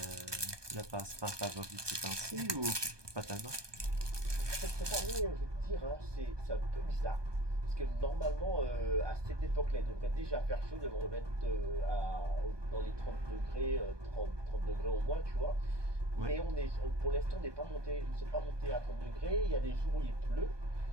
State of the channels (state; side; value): late; left; 1.2 ms